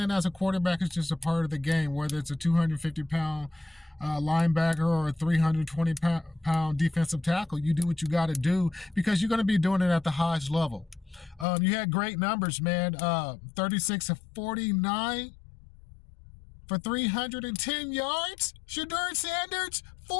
as a quarterback is just a part of the game, whether it's a 250-pound linebacker or a 320-pound defensive tackle. You do what you got to do because you're going to be doing it at the highest level. You had great numbers, man. 36 of 49 for 310 yards. Shedeur Sanders,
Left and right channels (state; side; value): drops out; right; at 11.5 s